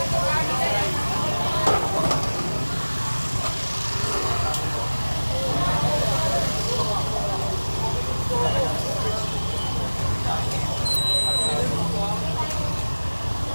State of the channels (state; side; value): inverted; both; correlation -1.00